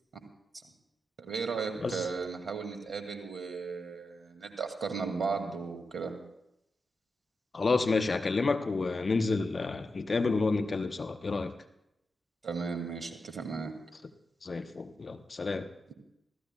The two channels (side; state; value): both; normal; correlation 0.88